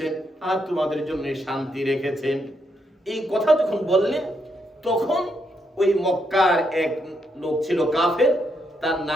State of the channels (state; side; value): normal; both; correlation 0.78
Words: আর তোমাদের জন্য শান্তি রেখেছেন। এই কথা যখন বললেন, তখন ওই মক্কার এক লোক ছিল কাফের, তার